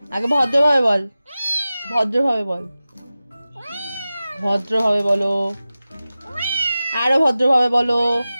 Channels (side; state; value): both; inverted; correlation -0.95